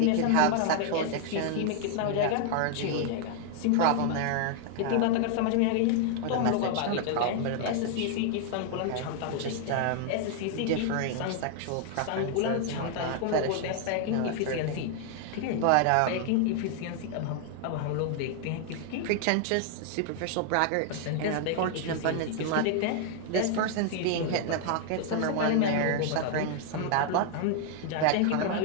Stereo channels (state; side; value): different; both; correlation 0.00